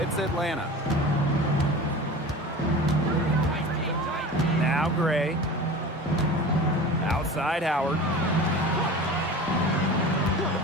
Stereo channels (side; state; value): both; normal; correlation 0.35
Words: Atlanta. Now Gray. Outside Howard.